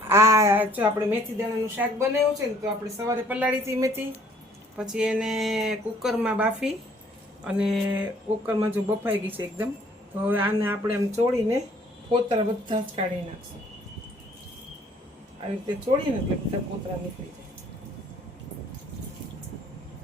આ જો આપણે મેથી દાણાનું શાક બનાવ્યું છે ને, તો આપણે સવારે પલાળી હતી મેથી, પછી એને કુકરમાં બાફી અને કુકરમાં જો બફાઈ ગઈ છે એકદમ, તો હવે આને આપણે એમ ચોળીને ફોતરા બધા જ કાઢી નાખશું. આવી રીતે ચોળીને એટલે બધા ફોતરા નીકળી જાય.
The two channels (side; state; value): both; normal; correlation 0.59